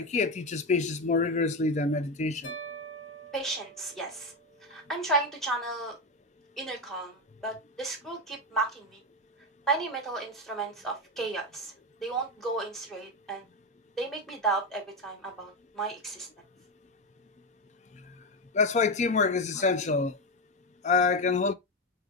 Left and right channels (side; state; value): both; normal; correlation 0.12